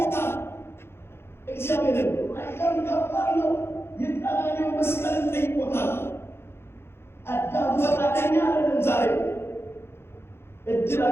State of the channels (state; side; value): late; right; 0.12 ms